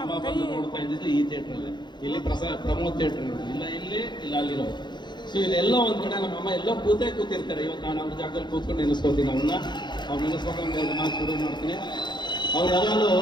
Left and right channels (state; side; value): late; right; 0.21 ms